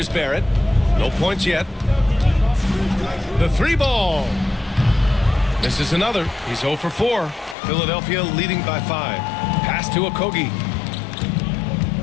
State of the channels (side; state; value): right; drops out; at 7.6 s